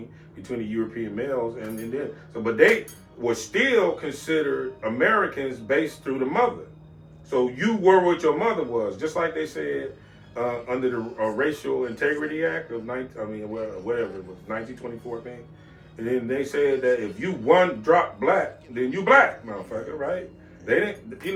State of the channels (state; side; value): identical; both; correlation 1.00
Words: between the European males and then but they were still considered Americans based through the mother. So you were what your mother was, just like they said under the Racial Integrity Act of 1924 thing. And then they said that if you one drop black, then you black, motherfucker, right? They didn't,